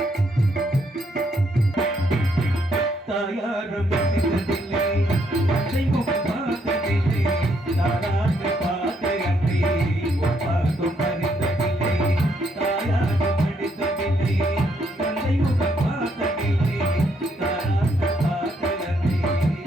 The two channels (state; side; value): normal; both; correlation 0.73